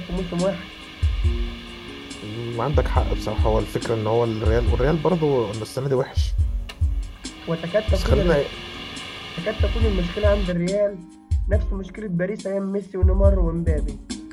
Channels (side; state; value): both; identical; correlation 1.00